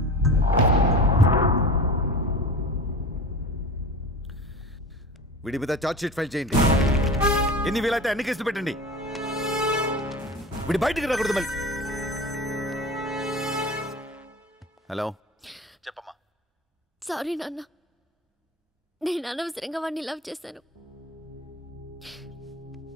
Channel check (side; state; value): both; normal; correlation 0.33